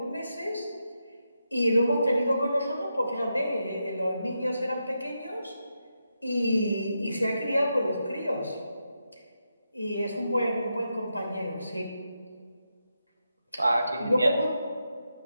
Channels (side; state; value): both; inverted; correlation -0.85